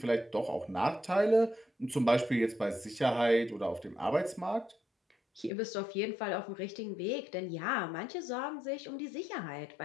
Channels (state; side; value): drops out; right; at 5.5 s